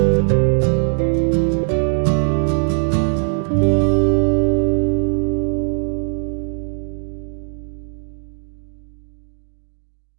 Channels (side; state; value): left; silent; digital silence